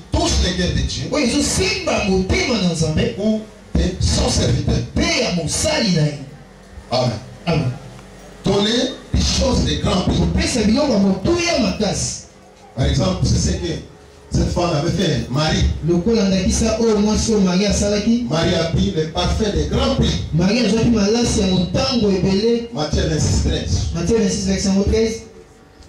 touchent les cœurs de Dieu ou de son serviteur. Amen. Amen. Donner des choses de grand prix. Par exemple, c'est ce que cette femme avait fait. Marie. Marie a pris le parfum de grand prix. Matthieu 26:13.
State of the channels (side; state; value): both; identical; correlation 1.00